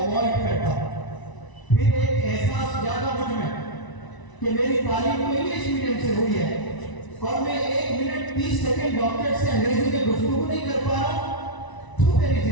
करता। फिर एक एहसास जागा मुझ में कि मेरी तालीम तो इंग्लिश मीडियम से हुई है और मैं 1 मिनट 30 सेकंड डॉक्टर से अंग्रेजी में गुफ्तगू नहीं कर पा रहा। तो मेरी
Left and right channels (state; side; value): late; right; 1.0 ms